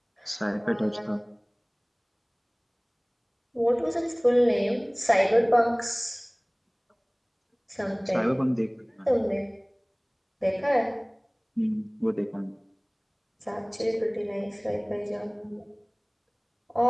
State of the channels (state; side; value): identical; both; correlation 1.00